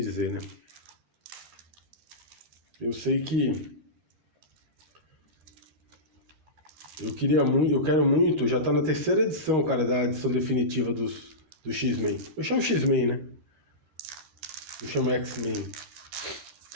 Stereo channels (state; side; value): late; left; 13 ms